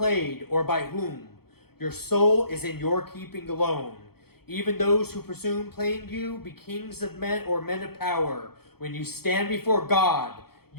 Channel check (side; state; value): right; late; 0.96 ms